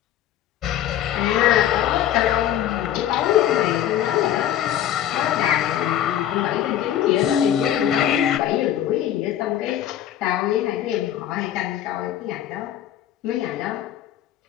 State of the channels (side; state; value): right; quieter; 11.3 dB